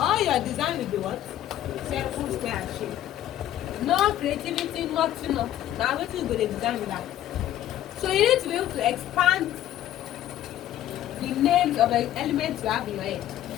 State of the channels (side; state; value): right; quieter; 12.3 dB